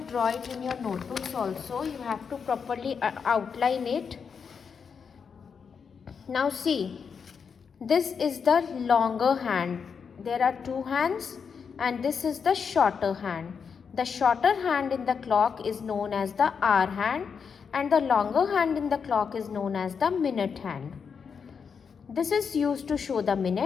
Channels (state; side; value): quieter; right; 6.2 dB